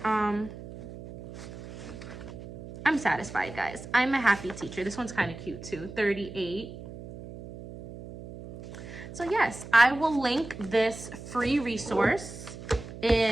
I'm satisfied, guys. I'm a happy teacher. This one's kind of cute too, 38. So yes, I will link this free resource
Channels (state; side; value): noise; right; hum, 13 dB below the sound